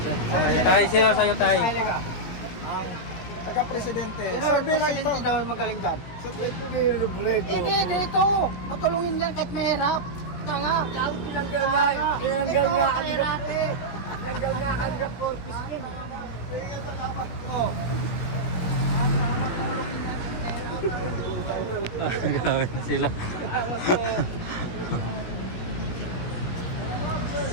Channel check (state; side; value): late; right; 17 ms